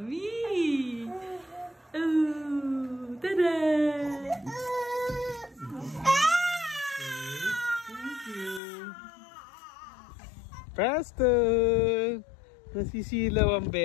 Oh, tada! Thank you. Preston! Nasisilaw ang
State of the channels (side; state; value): right; drops out; at 8.6 s